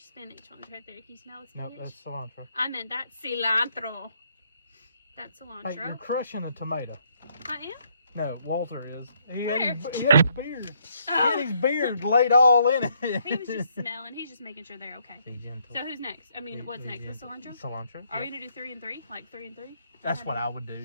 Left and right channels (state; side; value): inverted; both; correlation -0.71